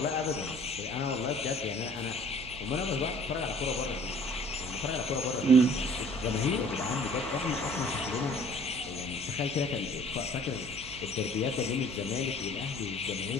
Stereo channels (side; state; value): right; noise; hum, 16 dB below the sound